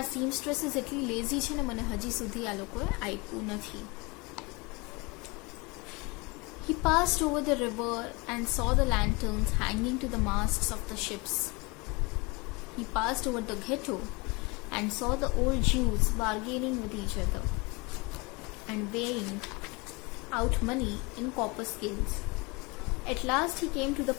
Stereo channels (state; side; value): quieter; right; 27.0 dB